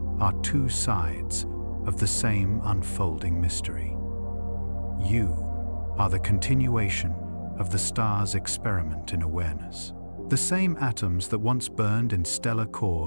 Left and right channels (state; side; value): inverted; both; correlation -1.00